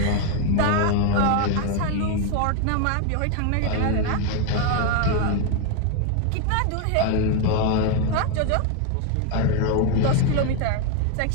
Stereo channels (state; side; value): different; both; correlation 0.01